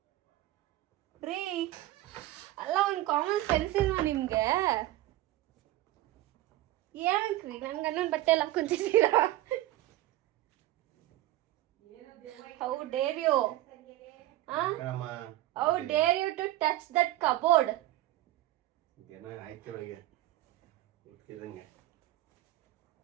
ರೀ? ಅಲ್ಲ, ಒಂದು ಕಾಮನ್ ಸೆನ್ಸ್ ಇಲ್ವಾ ನಿಮಗೆ? ಏನಕ್ಕೆ ರೀ ನನ್ನ ಗಂಡನ ಬಟ್ಟೆ ಎಲ್ಲ ಹಾಕ್ಕೊಂತಿದ್ದೀರಾ? How dare you? How dare you to touch that cupboard?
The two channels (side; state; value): left; quieter; 15.5 dB